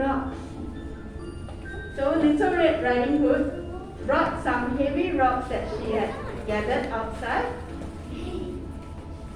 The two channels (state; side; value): identical; both; correlation 1.00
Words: so Little Red Riding Hood brought some heavy rocks that she had gathered outside.